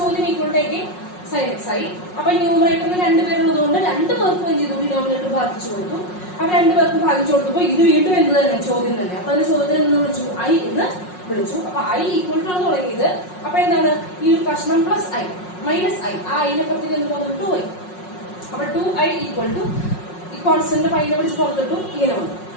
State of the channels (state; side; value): late; right; 5.5 ms